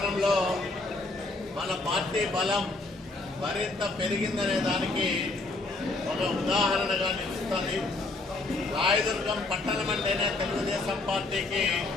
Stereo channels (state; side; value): quieter; right; 3.2 dB